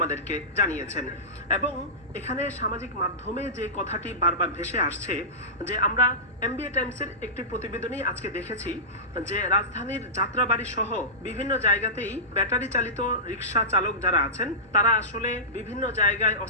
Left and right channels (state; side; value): normal; both; correlation -0.18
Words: জানিয়েছেন। এবং এখানে সামাজিক মাধ্যমে যে কথাটি বারবার ভেসে আসছে যে আমরা এমবিএ টাইমসের একটি প্রতিবেদনেই আজকে দেখেছি যে রাজধানীর যাত্রাবাড়ি সহ বিভিন্ন জায়গাতেই ব্যাটারি চালিত রিক্সা চালক যারা আছেন তারা আসলে বিভিন্ন জায়গায়